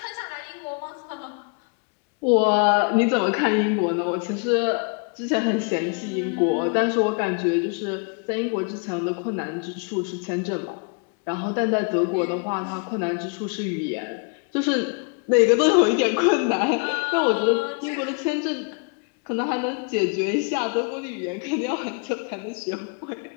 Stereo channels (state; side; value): quieter; right; 36.3 dB